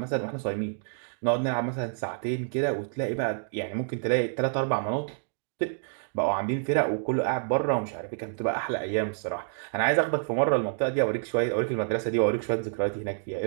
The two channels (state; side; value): silent; left; digital silence